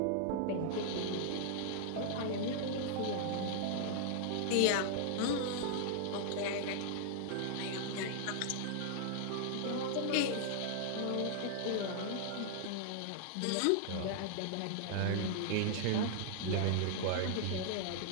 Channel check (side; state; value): both; different; correlation 0.00